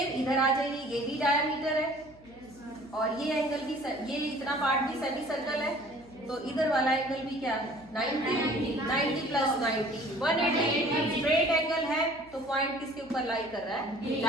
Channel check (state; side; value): noise; left; hum, 25 dB below the sound